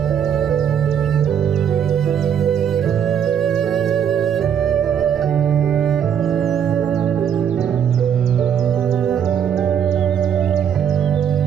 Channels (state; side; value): quieter; left; 8.5 dB